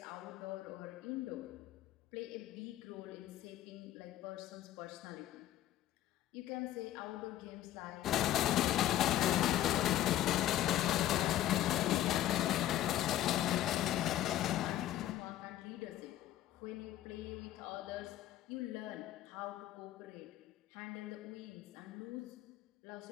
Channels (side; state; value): right; quieter; 13.1 dB